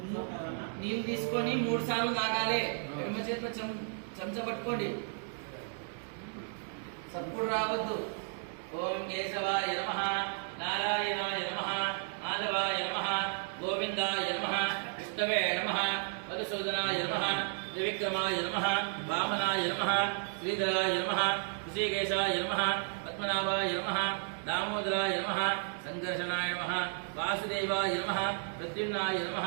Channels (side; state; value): left; silent; 56 dB below the other